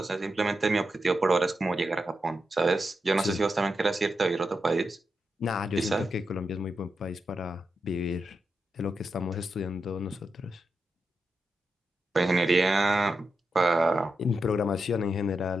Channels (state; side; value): normal; both; correlation 0.87